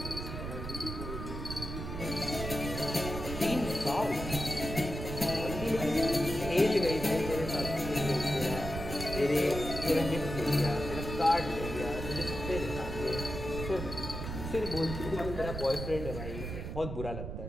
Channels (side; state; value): right; noise; rumble, 6 dB below the sound